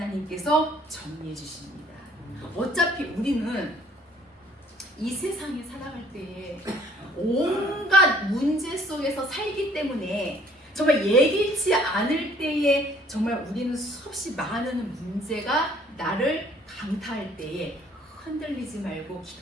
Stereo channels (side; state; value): both; normal; correlation 0.59